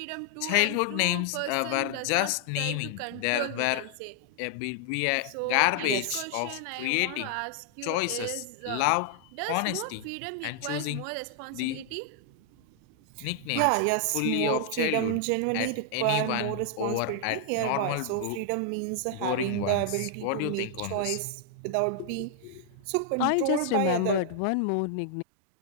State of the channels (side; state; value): both; different; correlation 0.00